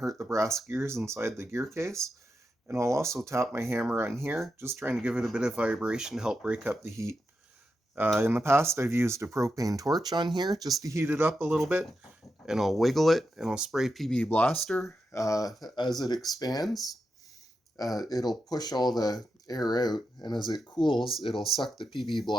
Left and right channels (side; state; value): both; normal; correlation 0.87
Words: the brass gears inside the gear case. And I'll also tap my hammer on here, just trying to give it a bit of vibration to help break up the heat. In the past, I've used a propane torch on here just to heat it up a little bit, and I'll wiggle it, and I'll spray PB Blaster. As it expands, it'll push all the air out, and as it cools, it'll suck the PB